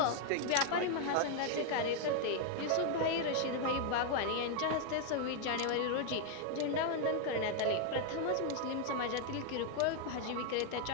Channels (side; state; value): both; different; correlation 0.00